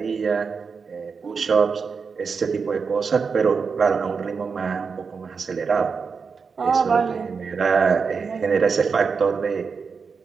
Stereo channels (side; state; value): left; quieter; 5.4 dB